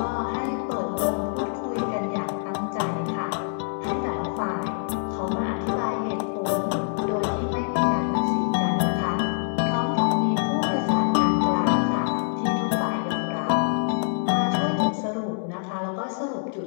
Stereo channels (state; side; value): silent; right; 62 dB below the other